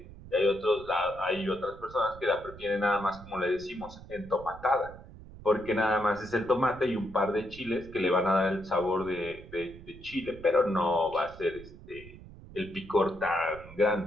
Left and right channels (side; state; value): right; noise; rumble, 17 dB below the sound